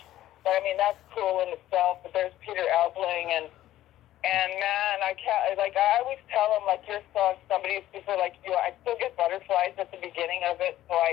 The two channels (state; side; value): quieter; right; 13.9 dB